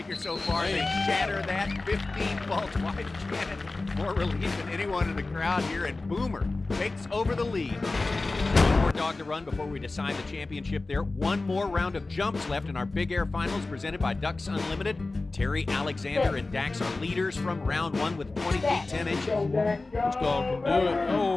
so far. They shatter that. 15 faults wide. Janet, more relief than anyone in the crowd here. And Boomer takes over the lead. One more dog to run before we decide the championship there. One more round of jumps left in our Big Air Finals presented by Ducks Unlimited. Terry, Alexander, and Dax are leaders from round 1 with 20 feet 10 inches. This dog can do it.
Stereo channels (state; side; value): quieter; right; 3.3 dB